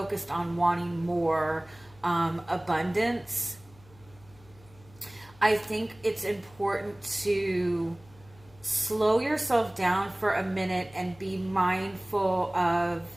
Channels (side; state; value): left; noise; hum, 25 dB below the sound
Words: on wanting more abundance, I think it's important to slow yourself down for a minute and be mindful of